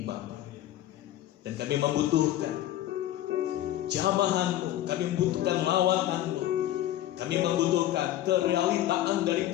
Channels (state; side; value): quieter; right; 13.4 dB